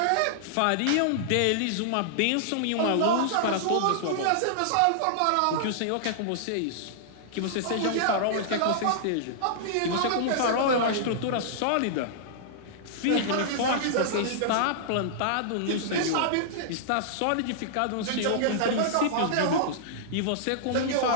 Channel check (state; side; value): different; both; correlation -0.01